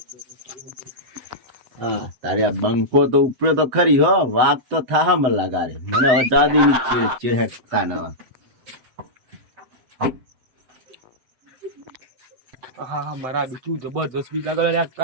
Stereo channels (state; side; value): late; left; 7.8 ms